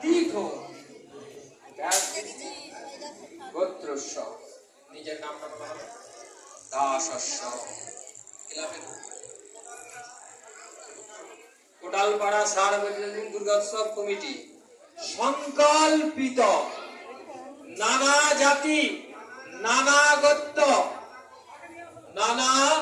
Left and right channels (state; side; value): identical; both; correlation 1.00